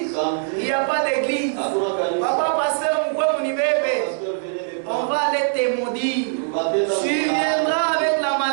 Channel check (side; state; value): left; silent; digital silence